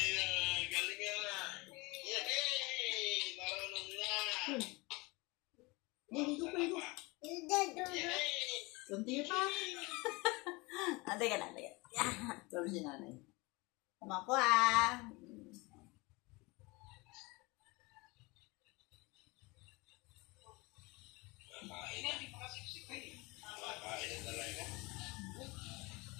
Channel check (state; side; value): quieter; right; 24.9 dB